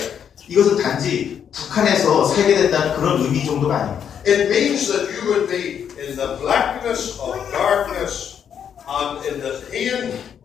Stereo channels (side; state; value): right; quieter; 8.3 dB